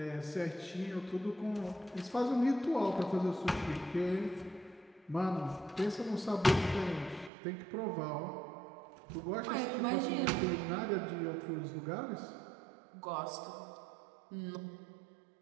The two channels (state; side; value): drops out; left; at 7.3 s